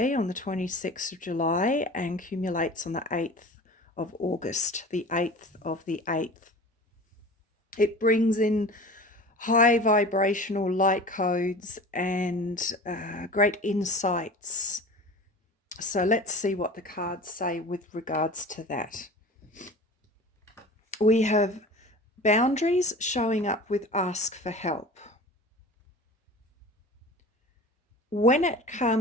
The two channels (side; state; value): both; normal; correlation 0.38